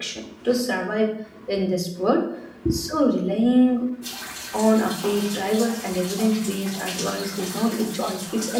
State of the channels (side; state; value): both; identical; correlation 1.00